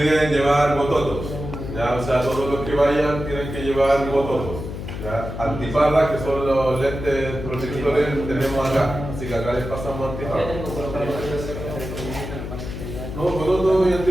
llevar bototos. ¿Ya? O sea, todos los que vayan tienen que llevar bototos. ¿Ya? Antiparras, que son los lentes protectores, tenemos acá. Así que acá les pasamos antiparras. No, bototos y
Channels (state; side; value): noise; left; hum, 7 dB below the sound